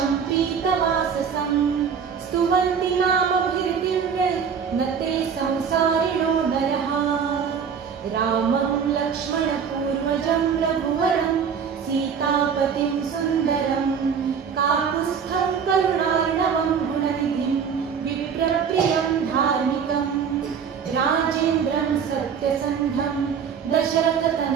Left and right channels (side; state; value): left; quieter; 6.9 dB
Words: पीतवाससं स्तुवन्ति नामभिर्दिव्यैः न ते संसारिणो नरः रामं लक्ष्मणपूर्वजं रघुवरं सीतापतिं सुन्दरं काकुत्स्थं करुणार्णवं गुणनिधिं विप्रप्रियं धार्मिकं राजेन्द्रं सत्यसन्धं